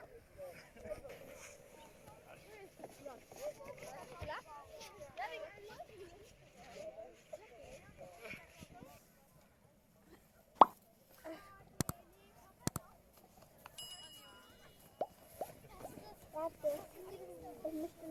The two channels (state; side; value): identical; both; correlation 1.00